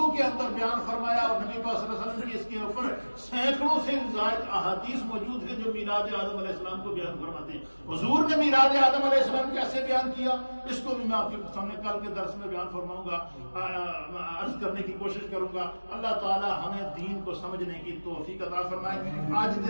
کے اندر بیان فرمایا، اور نبی پاک صلی اللہ علیہ وسلم کی اس کے اوپر سینکڑوں سے زائد احادیث موجود ہیں جو میلاد آدم علیہ السلام کو بیان فرماتے ہیں۔ حضور نے میلاد آدم علیہ السلام کیسے بیان کیا، اس کو بھی میں آپ کے سامنے کل کے درس میں بیان فرماؤں گا، عرض کرنے کی کوشش کروں گا۔ اللہ تعالی ہمیں دین کو سمجھنے کی توفیق عطا فرمائے۔ آج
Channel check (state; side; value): inverted; both; correlation -1.00